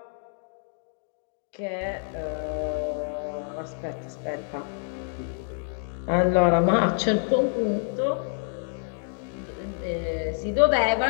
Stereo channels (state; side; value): silent; right; digital silence